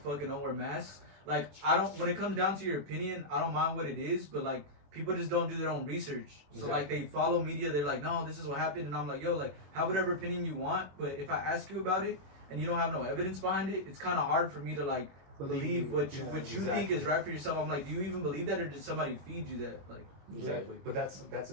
and don't wear masks. Like I don't. When it comes down to your opinion, I don't mind what it is, but like people just don't do their own research. So like they follow media. They're like, no, this is what happened, and I'm like, yo, like have whatever opinion you want, but if I ask you about it and you don't have no evidence behind it, it's kind of hard for me to like believe what you think is right for yourself. I'm like, do you even believe that, or did somebody feed you that? Like, Exactly. But that's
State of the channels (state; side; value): late; left; 21 ms